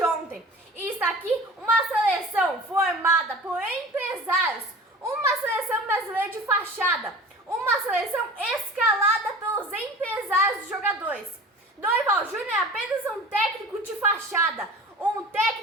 ontem. E está aqui uma seleção formada por empresários, uma seleção brasileira de fachada, uma seleção escalada pelos empresários dos jogadores. Dorival Júnior é apenas um técnico de fachada, um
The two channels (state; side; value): normal; both; correlation 0.39